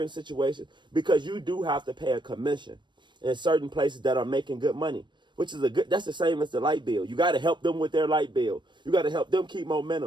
situations, because you do have to pay a commission in certain places that are making good money, which is that's the same as the light bill. You got to help them with their light bill. You got to help them keep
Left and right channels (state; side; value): late; left; 0.22 ms